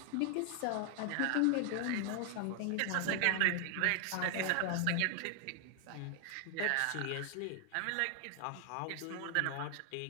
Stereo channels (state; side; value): different; both; correlation 0.00